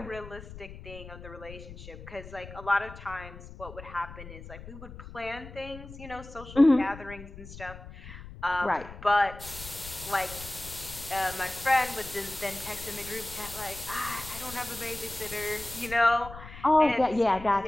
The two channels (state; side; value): noise; left; rumble, 14 dB below the sound